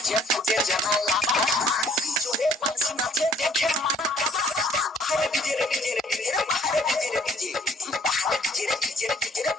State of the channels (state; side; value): normal; both; correlation 0.59